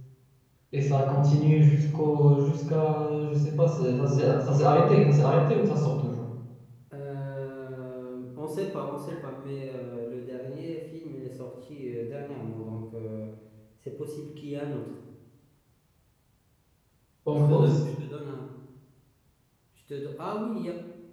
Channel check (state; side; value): identical; both; correlation 1.00